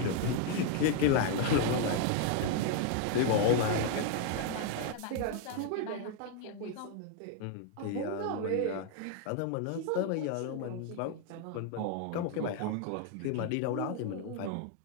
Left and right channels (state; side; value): different; both; correlation 0.00